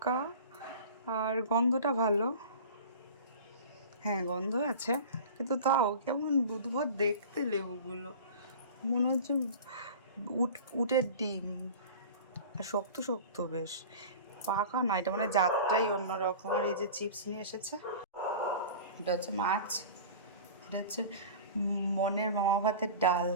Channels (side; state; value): both; inverted; correlation -0.37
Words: আর গন্ধটা ভালো, হ্যাঁ গন্ধ আছে, কিন্তু তাও কেমন বুধবার দেখতে লেবুগুলো, মনে হচ্ছে উটের ডিম, আর শক্ত শক্ত বেশ, পাকা না, এটা মানে জাতটাই অন্যরকম। আর এই যে চিপস নিয়ে এসেছে, এটা হচ্ছে মাছ, এটা হচ্ছে মনের মামা ভাতের ডাল,